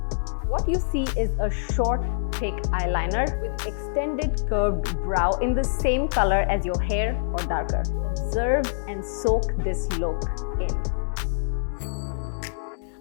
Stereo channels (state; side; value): silent; right; digital silence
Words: What you see is a short, thick eyeliner with extended curved brow in the same color as your hair or darker. Observe and soak this look in.